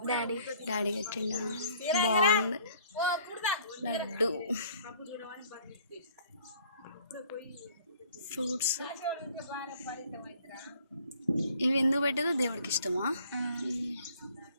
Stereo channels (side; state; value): both; inverted; correlation -0.57